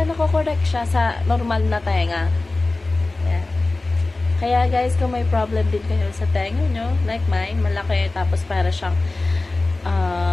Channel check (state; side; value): quieter; right; 3.1 dB